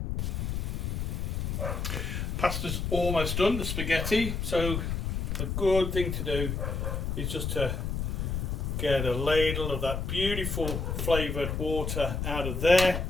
Pasta's almost done, the spaghetti. So a good thing to do is just to get a ladle of that beautiful flavoured water out of there.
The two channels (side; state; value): left; noise; rumble, 2 dB below the sound